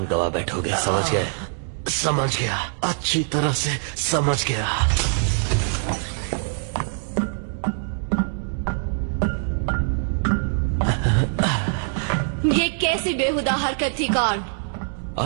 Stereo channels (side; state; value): left; silent; 63 dB below the other